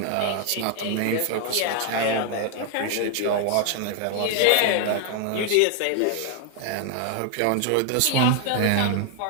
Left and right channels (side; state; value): both; different; correlation 0.00